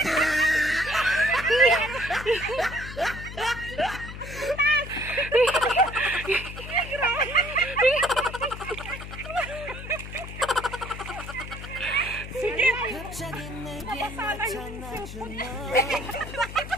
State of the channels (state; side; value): noise; left; hum, 11 dB below the sound